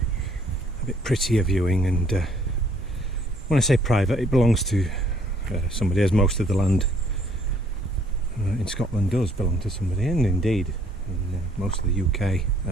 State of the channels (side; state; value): both; normal; correlation 0.63